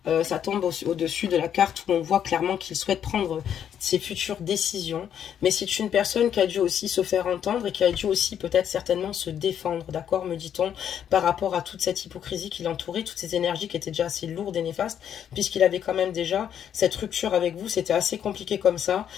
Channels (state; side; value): quieter; right; 9.2 dB